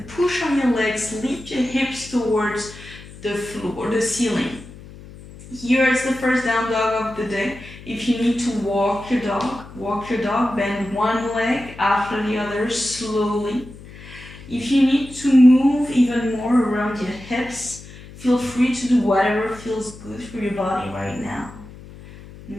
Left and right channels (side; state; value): left; noise; hum, 17 dB below the sound